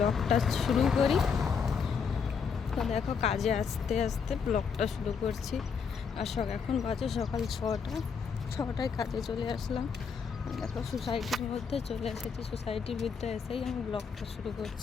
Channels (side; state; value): right; quieter; 6.1 dB